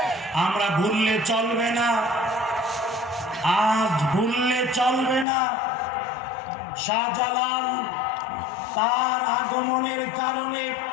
আমরা ভুললে চলবে না, আজ ভুললে চলবে না। শাহজালাল তার আগমনের কারণে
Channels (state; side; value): drops out; right; at 5.2 s